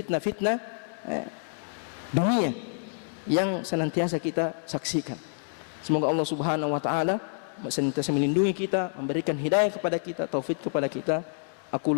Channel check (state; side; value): silent; right; digital silence